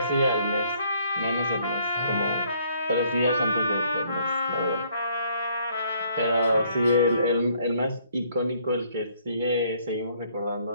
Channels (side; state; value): both; inverted; correlation -0.65